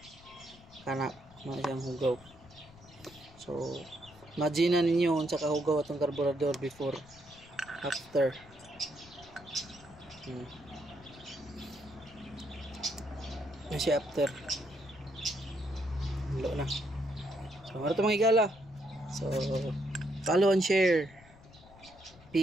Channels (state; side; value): noise; left; rumble, 23 dB below the sound